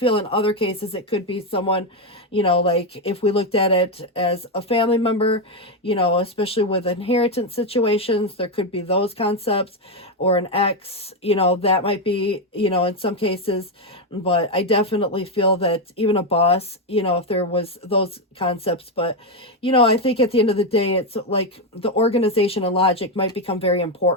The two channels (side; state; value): both; normal; correlation 0.06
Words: in other cases it could be someone, you know, like if we looked at it as a family member, you know, especially with inheritance situations, there could be those concepts, or an ex, you know, that might be, you know, in some cases. But I definitely feel that even a boss, you know, if there was those concepts. But, you know, I think at the end of the day, it's like the organization and logic might become very